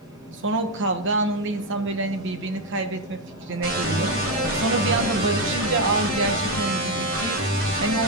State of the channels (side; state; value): both; normal; correlation 0.06